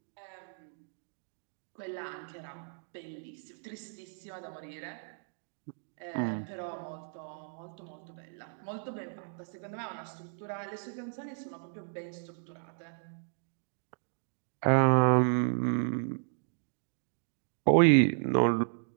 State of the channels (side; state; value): left; silent; digital silence